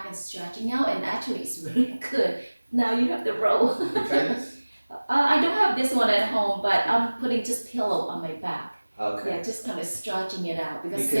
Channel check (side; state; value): both; inverted; correlation -1.00